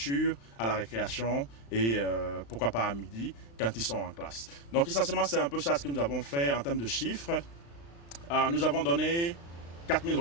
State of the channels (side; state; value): right; late; 35 ms